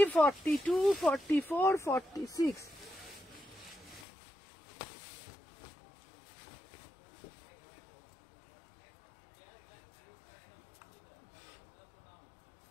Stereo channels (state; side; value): drops out; right; at 4.0 s